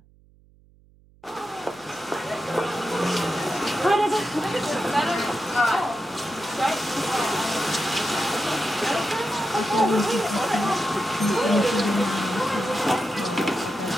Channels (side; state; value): right; noise; hum, 29 dB below the sound